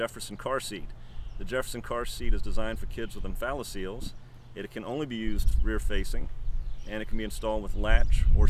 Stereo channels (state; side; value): identical; both; correlation 1.00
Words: car seat. The Jefferson car seat is designed for kids with umbilical. It can only be used rear facing, and it can be installed with latch or